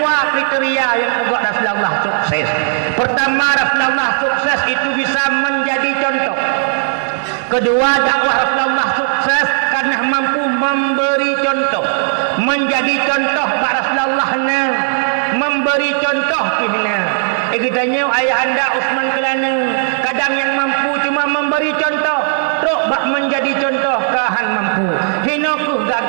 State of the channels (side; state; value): left; silent; 63 dB below the other